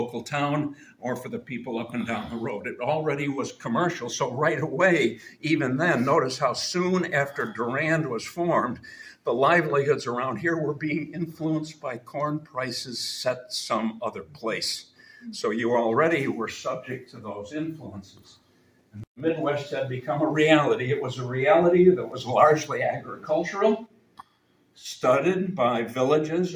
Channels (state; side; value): identical; both; correlation 1.00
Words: town or for the people up and down the road. It already was commercial. So right away, even then, notice how soon after Durand was formed, the livelihoods around here were being influenced by corn prices set some other place. So you already were subject to those influences. The Midwest had become a reality. It was a reality that was largely agricultural, studded by villages